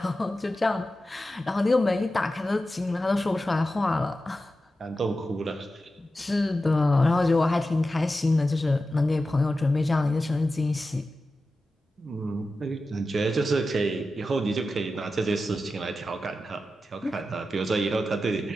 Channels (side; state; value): both; normal; correlation 0.92